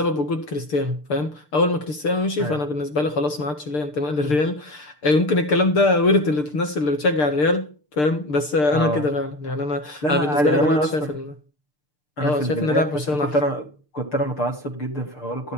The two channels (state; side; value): late; right; 6.7 ms